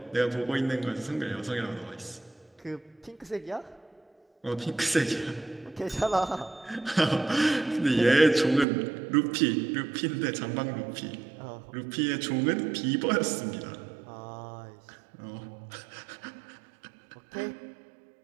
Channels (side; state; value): left; drops out; at 8.7 s